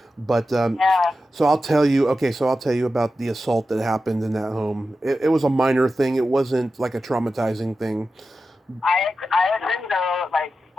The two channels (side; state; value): both; normal; correlation 0.92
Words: But so I'll tell you. Okay, so I'll tell you about the assault that happened in that home. It was a minor thing. It wasn't like a traumatizing thing. I agree though, like